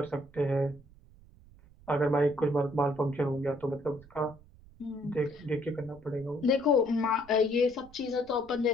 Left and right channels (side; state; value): right; noise; rumble, 24 dB below the sound